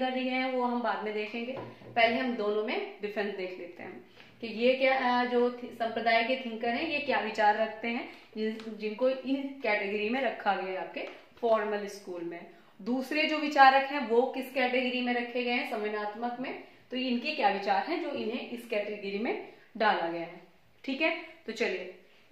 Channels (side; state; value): both; identical; correlation 1.00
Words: दिए हैं वो हम बाद में देखेंगे। पहले हम दोनों में डिफरेंस देख लेते हैं कि ये क्या जो संप्रदाय के थिंकर हैं ये क्या विचार रखते हैं, जिनको इन कैटेगरी में रखा गया है आपके फॉर्मल स्कूल में। दूसरे जो विचारक हैं वो किस कैटेगरी में रखे गए हैं, संवेदनात्मक में। तो इनके क्या विचार हैं जो इन्हें इस कैटेगरी में डाला गया है, ठीक है। तो चलिए